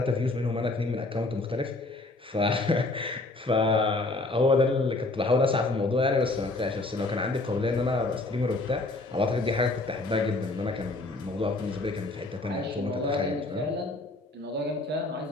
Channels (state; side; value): quieter; right; 3.0 dB